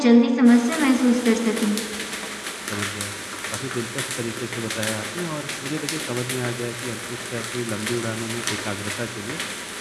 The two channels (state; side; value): identical; both; correlation 1.00